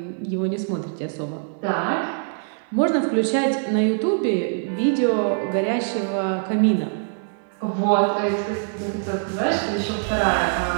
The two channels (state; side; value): silent; left; digital silence